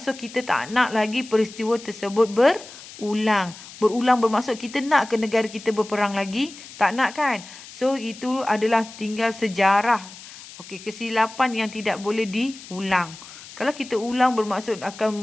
so kita tak nak lagi peristiwa tersebut berulang. Berulang bermaksud kita nak ke negara kita berperang lagi? Tak nak kan? So itu adalah tinggal sejarah. Okey, kesilapan yang tidak boleh diulang. Kalau kita ulang bermaksud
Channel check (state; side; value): noise; left; hiss, 17 dB below the sound